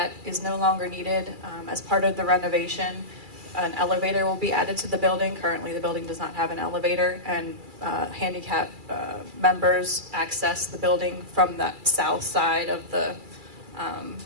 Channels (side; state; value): left; late; 2.3 ms